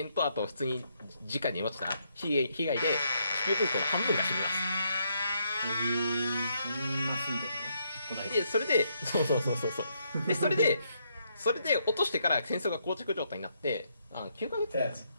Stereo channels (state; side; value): inverted; both; correlation -0.75